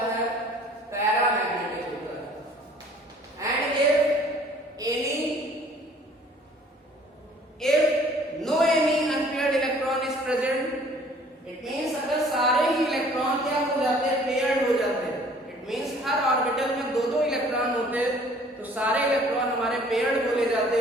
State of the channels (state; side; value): normal; both; correlation 0.54